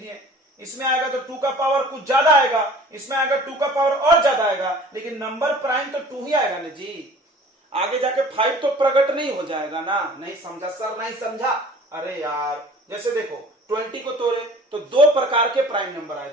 इसमें आएगा तो 2 का पावर कुछ ज्यादा आएगा, इसमें आएगा 2 का पावर और ज्यादा आएगा, लेकिन नंबर प्राइम तो 2 ही आएगा ना जी। आगे जाके 5 तो प्रकट नहीं हो जाएगा ना। नहीं समझा सर, नहीं समझा। अरे यार जैसे देखो 20 को तोड़े तो 2 प्रकार के प्राइम नंबर आए,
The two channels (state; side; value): normal; both; correlation 0.47